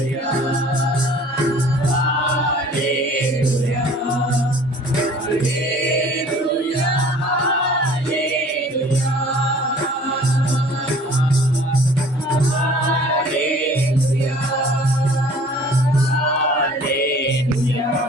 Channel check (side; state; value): both; normal; correlation 0.50